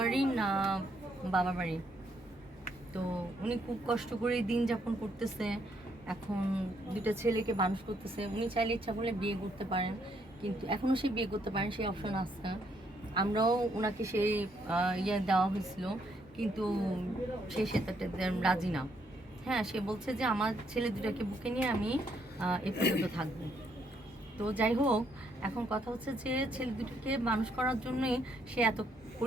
না বাবার বাড়ি। তো উনি খুব কষ্ট করে দিন যাপন করতেছে, এখন 2টা ছেলেকে মানুষ করতেছে। উনি চাইলে ইচ্ছা করলে বিয়ে করতে পারেন, কিন্তু এখনও সে বিয়ে করতে পারেন, সেই অপশন আছে। আমরাও ওনাকে সেই ইয়ে দেওয়া হয়েছিল, কিন্তু সে সেটাতে রাজি না। হ্যাঁ, সে বলছে যে আমার ছেলে 2টাকে বুকে নিয়ে আমি এ পর্যন্ত থাকবো। তো যাই হোক, এখন কথা হচ্ছে যে ছেলে 2টাকে মানুষ করার জন্যই সে এত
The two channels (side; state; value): both; normal; correlation 0.72